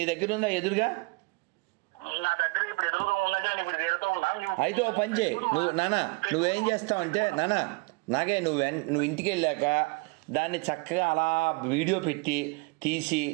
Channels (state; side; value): quieter; left; 28.6 dB